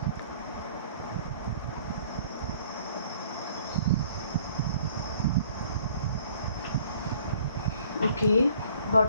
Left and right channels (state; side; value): inverted; both; correlation -0.56